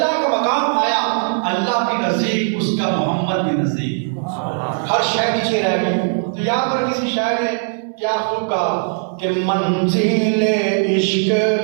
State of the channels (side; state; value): left; silent; digital silence